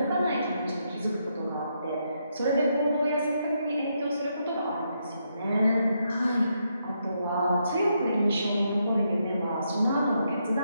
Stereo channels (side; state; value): both; inverted; correlation -0.79